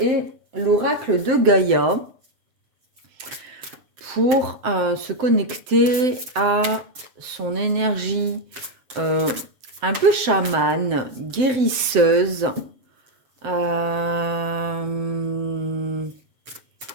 l'oracle de Gaïa pour se connecter à son énergie un peu chamane, guérisseuse.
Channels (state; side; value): late; left; 7.7 ms